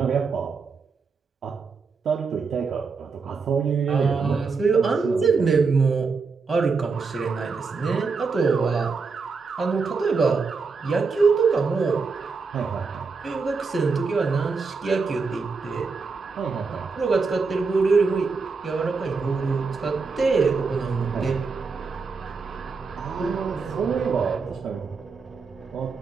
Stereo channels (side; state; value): left; quieter; 4.7 dB